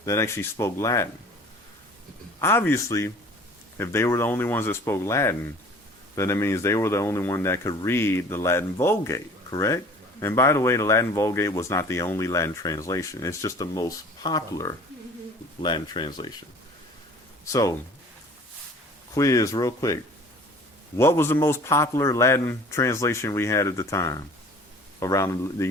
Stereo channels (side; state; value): both; normal; correlation 0.47